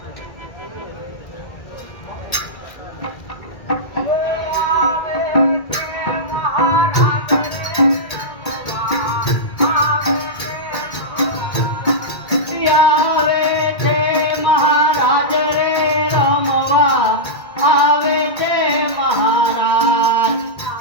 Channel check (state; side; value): late; right; 1.8 ms